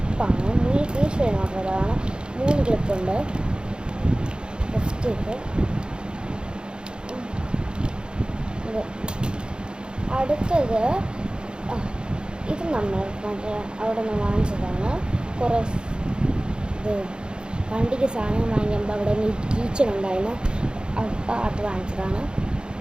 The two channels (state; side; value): late; left; 0.050 ms